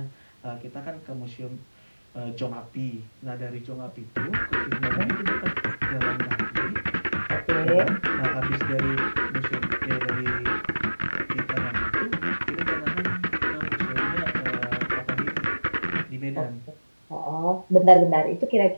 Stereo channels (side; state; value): both; inverted; correlation -1.00